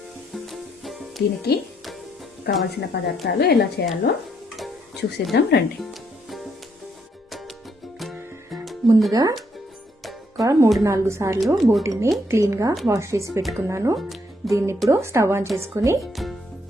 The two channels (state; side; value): normal; both; correlation 0.73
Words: దీనికి కావాల్సిన పదార్థాలు ఎలా చేయాలో చూసేద్దాం రండి. ముందుగా ఒక 3-4 సార్లు బోటిని క్లీన్గా వాష్ చేసి పెట్టుకున్నాను. దీన్ని ఇప్పుడు స్టవ్ ఆన్ చేసుకుని